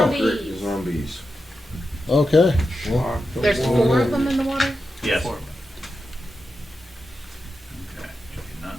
Zombies. Okay. Well, There's 4 of them in the water. Yes. Four. Okay. You do not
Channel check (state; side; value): normal; both; correlation 0.89